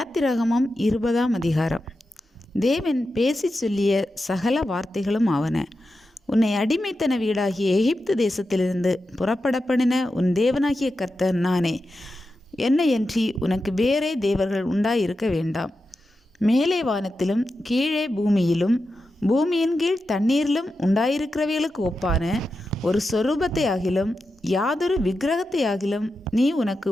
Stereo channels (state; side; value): normal; both; correlation 0.90